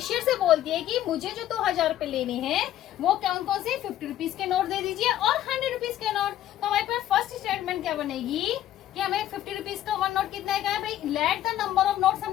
से बोलती है कि मुझे जो 2000 रुपए लेने हैं वो कौन से 50 रुपीज के नोट दे दीजिए और 100 रुपीज के नोट। तो हमारे पास फर्स्ट स्टेटमेंट क्या बनेगी कि हमें 50 रुपीज का वन नोट कितना है भाई, let the number of notes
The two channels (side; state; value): right; quieter; 12.6 dB